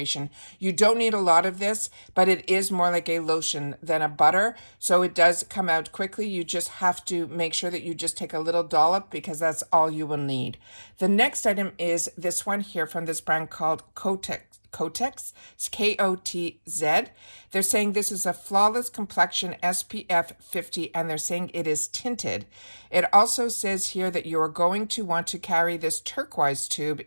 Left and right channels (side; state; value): both; inverted; correlation -1.00